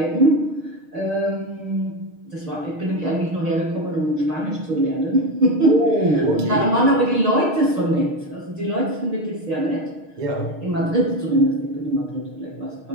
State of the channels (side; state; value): left; late; 6.5 ms